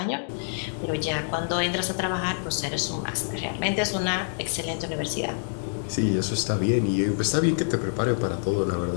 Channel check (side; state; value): right; silent; digital silence